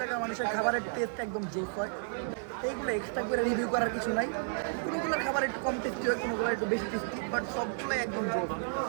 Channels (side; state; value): left; silent; 56 dB below the other